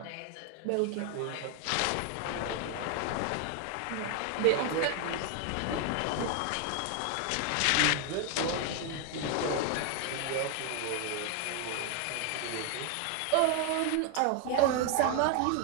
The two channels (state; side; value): different; both; correlation 0.00